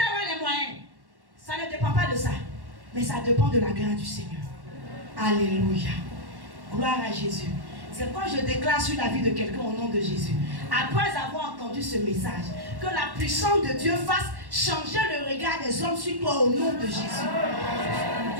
avoir les moyens. Ça ne dépend pas de ça. Mais ça dépend de la grâce du Seigneur. Alléluia. Gloire à Jésus. C'est quand je déclare sur la vie de quelqu'un au nom de Jésus, après avoir entendu ce message, que la puissance de Dieu fasse changer le regard des hommes sur toi au nom de Jésus.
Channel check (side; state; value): left; late; 1.1 ms